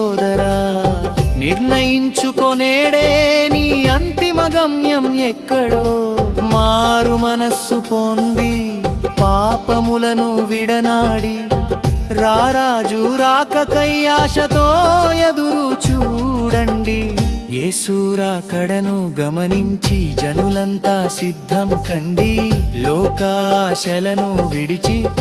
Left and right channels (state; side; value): identical; both; correlation 1.00